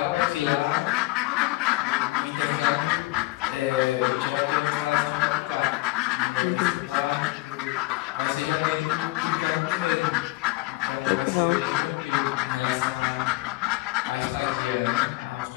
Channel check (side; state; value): right; quieter; 21.2 dB